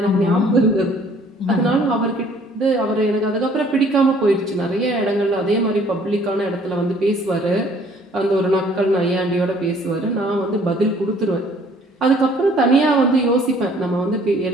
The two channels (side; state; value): both; normal; correlation 0.58